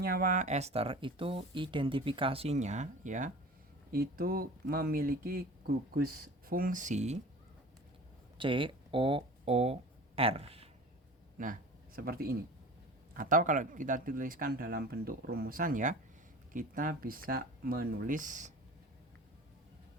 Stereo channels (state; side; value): normal; both; correlation 0.39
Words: ester itu identifikasinya ya, itu memiliki gugus fungsi COOR. Nah, seperti ini. Atau kalau kita tuliskan dalam bentuk rumusan ya, kita bisa menulis